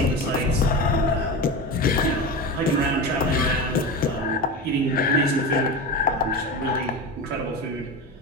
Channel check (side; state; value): both; normal; correlation 0.24